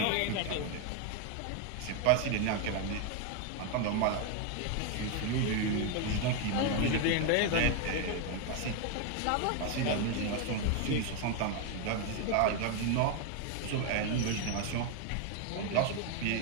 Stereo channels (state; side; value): different; both; correlation 0.01